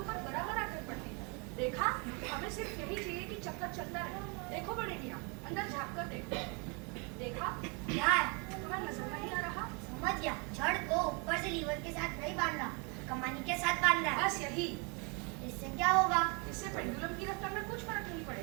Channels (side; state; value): left; quieter; 32.9 dB